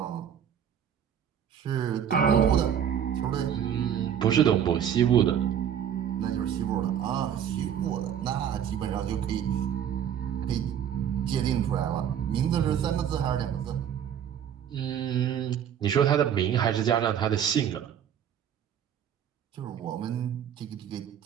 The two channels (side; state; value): left; quieter; 9.2 dB